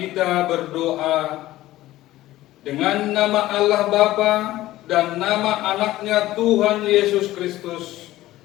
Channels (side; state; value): right; quieter; 15.8 dB